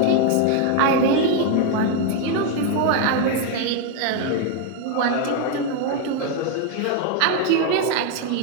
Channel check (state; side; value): different; both; correlation 0.01